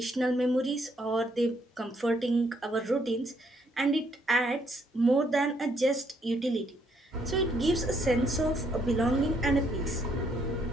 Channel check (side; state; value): both; normal; correlation 0.71